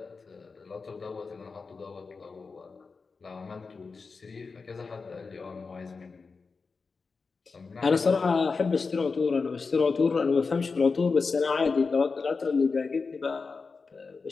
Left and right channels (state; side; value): quieter; right; 4.6 dB